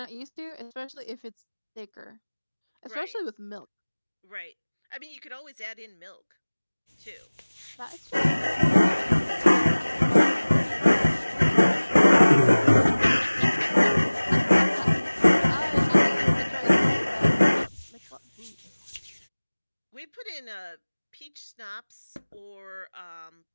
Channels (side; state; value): both; inverted; correlation -1.00